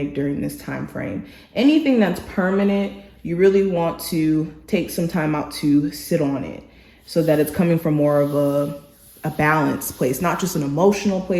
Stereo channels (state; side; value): identical; both; correlation 1.00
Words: during this time frame. Anything that's permanent, you really want to take some time out to sit on it, so that it's coming from more of a balanced place, not just an emotional